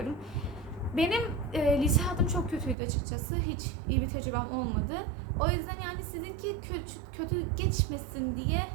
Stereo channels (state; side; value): drops out; left; at 2.8 s